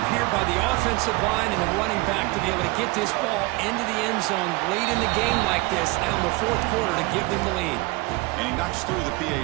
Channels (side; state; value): left; quieter; 23.4 dB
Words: here by the offensive line and the running back to be able to get this ball into the end zone late in the game like this, now in the 4th quarter, to give them the lead. And he knocks through the